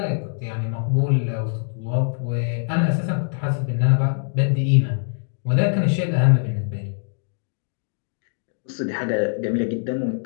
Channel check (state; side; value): silent; right; digital silence